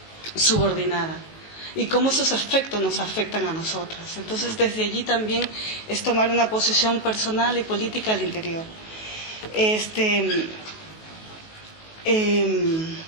subordinada, y cómo esos efectos nos afectan a nosotras. Entonces, desde allí también es tomar una posición personal y política al interior.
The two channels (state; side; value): late; right; 19 ms